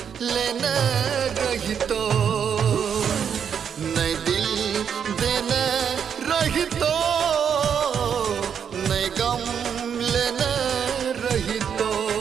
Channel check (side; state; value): left; quieter; 7.7 dB